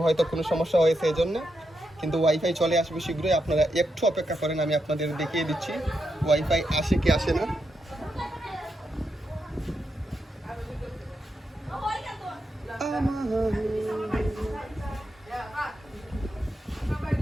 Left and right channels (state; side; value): normal; both; correlation 0.84